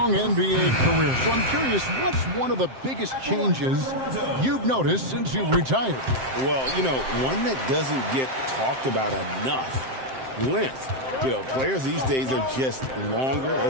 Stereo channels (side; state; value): left; late; 7.6 ms